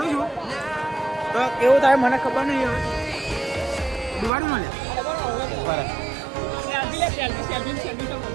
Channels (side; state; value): left; drops out; at 4.3 s